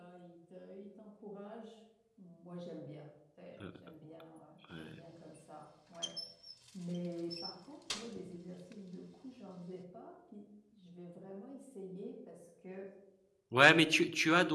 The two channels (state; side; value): identical; both; correlation 1.00